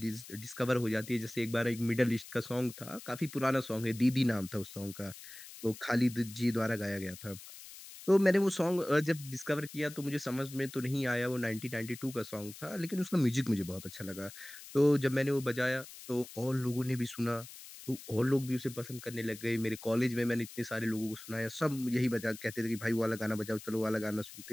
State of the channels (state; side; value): noise; left; hiss, 15 dB below the sound